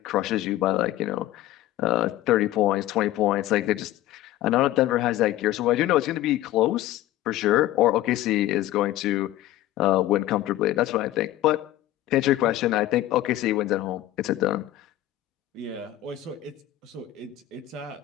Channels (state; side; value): quieter; right; 14.6 dB